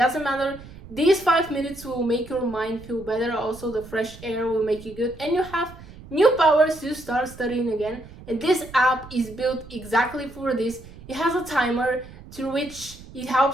matter. These 5 minutes will make your mind feel better. Also, the fresh air will make you good and you have new powers to start studying again. And this app is built exactly for this. It has a timer through which it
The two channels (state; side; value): noise; right; rumble, 18 dB below the sound